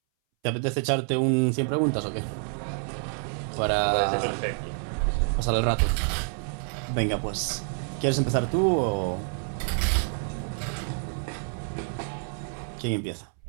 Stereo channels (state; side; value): silent; left; 60 dB below the other